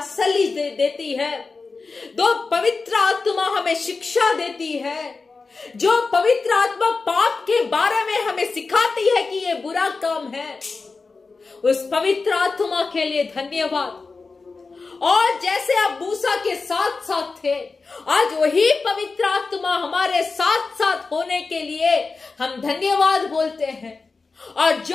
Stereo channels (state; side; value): quieter; right; 4.2 dB